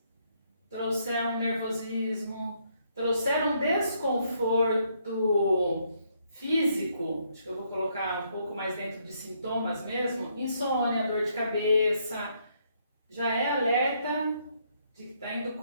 trouxer um nervosismo, trouxer um desconforto físico, acho que eu vou colocar um pouco mais dentro de sintomas mesmo, insônia, dor de cabeça, já é alerta de que está indo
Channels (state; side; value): inverted; both; correlation -0.72